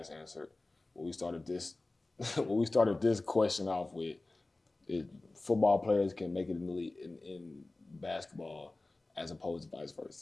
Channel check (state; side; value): quieter; right; 3.0 dB